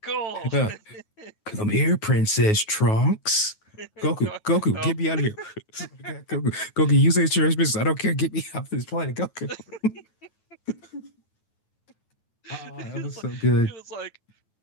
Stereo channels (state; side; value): late; right; 9.4 ms